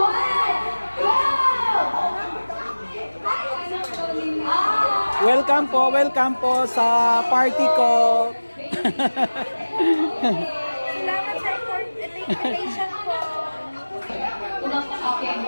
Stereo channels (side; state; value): both; inverted; correlation -1.00